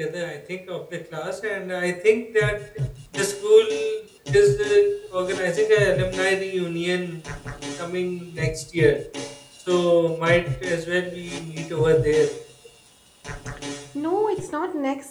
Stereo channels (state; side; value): identical; both; correlation 1.00